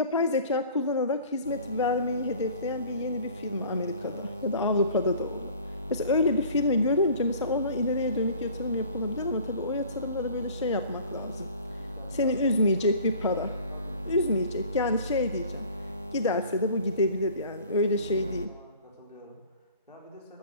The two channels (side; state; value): both; inverted; correlation -0.47